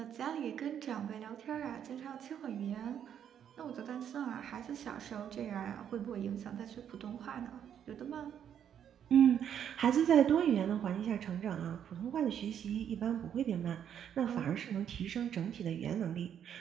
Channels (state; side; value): quieter; left; 9.1 dB